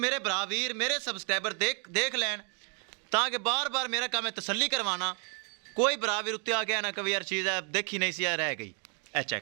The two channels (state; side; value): quieter; left; 39.1 dB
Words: बरावीर मेरे सबसक्राइबर देख लैन, ताकि बार बार मेरा काम है तसल्ली करवाना। कोई बरावीर उत्ते आ गया ना कभी यार चीज़ है देखी नहीं सी रह गई। ए